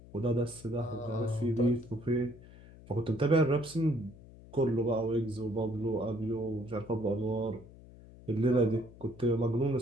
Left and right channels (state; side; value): noise; left; hum, 20 dB below the sound